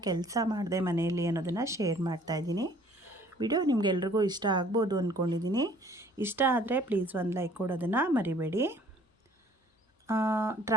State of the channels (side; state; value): both; normal; correlation 0.56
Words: ಕೆಲಸ ಮಾಡಿದೆ ಮನೆಯಲ್ಲಿ ಅನ್ನೋದನ್ನು ಶೇರ್ ಮಾಡ್ತಾಯಿದ್ದೀನಿ. ವಿಡಿಯೋ ನಿಮಗೆಲ್ರಿಗೂ ಇಷ್ಟ ಆಗ್ಬೋದು ಅಂದ್ಕೊಂಡಿದ್ದೀನಿ. ಇಷ್ಟ ಆದರೆ ಪ್ಲೀಸ್ ಒಂದು ಲೈಕ್ ಕೊಡೋದನ್ನು ಮರಿಬೇಡಿ.